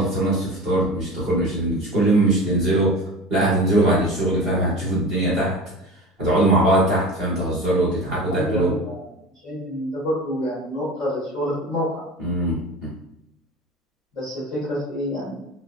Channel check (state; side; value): normal; both; correlation 0.34